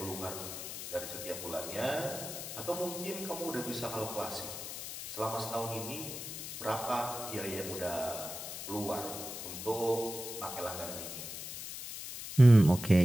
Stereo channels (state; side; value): noise; left; hiss, 8 dB below the sound